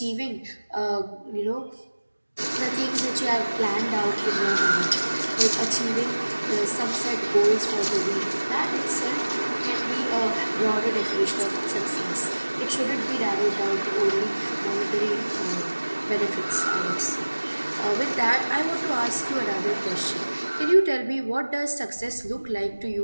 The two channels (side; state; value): both; inverted; correlation -1.00